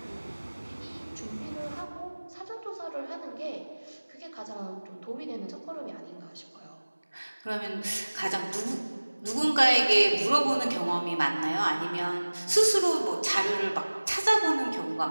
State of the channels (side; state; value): both; inverted; correlation -1.00